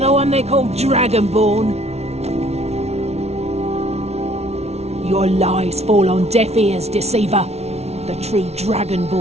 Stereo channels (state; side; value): late; left; 0.31 ms